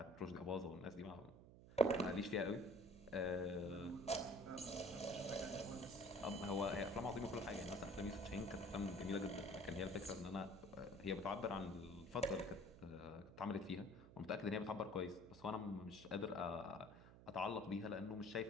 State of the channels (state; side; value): noise; right; hum, 17 dB below the sound